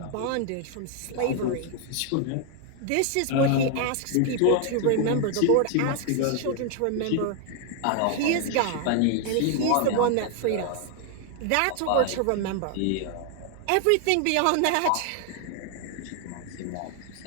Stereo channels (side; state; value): both; different; correlation 0.00